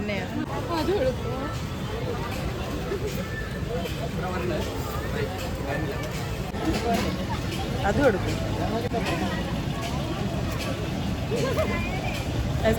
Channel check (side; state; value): both; identical; correlation 1.00